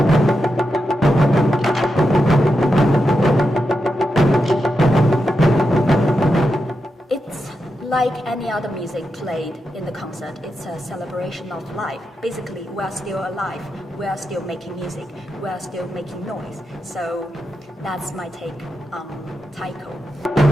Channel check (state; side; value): normal; both; correlation 0.87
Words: other music played in the concert. It's a celebration of life. Basically, we are still alive. We are still making music. We are still making noise. So that's my take on Taiko.